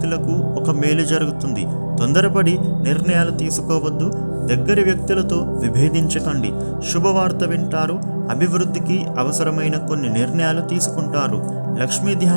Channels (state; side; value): inverted; both; correlation -1.00